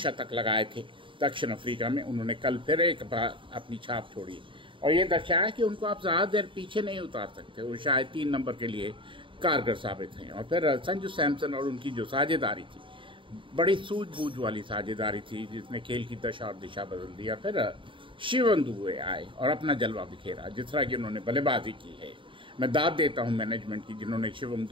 लगाए थे दक्षिण अफ्रीका में, उन्होंने कल फिर एक बार अपनी छाप छोड़ी और ये दर्शाया कि उनको आप ज़्यादा देर पीछे नहीं उतार सकते। वो शायद 3 नंबर के लिए कारगर साबित हैं। और फिर संजू सैमसन और उनकी जो साझेदारी थी, बड़ी सूझबूझ वाली साझेदारी थी, जिसने खेल की दशा और दिशा बदल दी। फिर शिवम दुबे आए और अपना जलवा बिखेरा, जिस तरह की उन्होंने बल्लेबाजी की है। मैं दाद देता हूं मैनेजमेंट की, जिन्होंने शिवम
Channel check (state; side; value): late; left; 0.25 ms